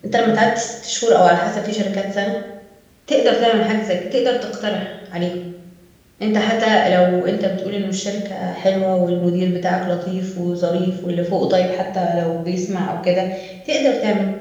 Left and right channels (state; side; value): identical; both; correlation 1.00